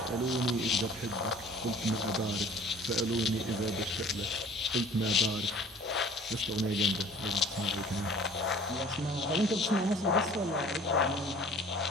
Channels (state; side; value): normal; both; correlation 0.49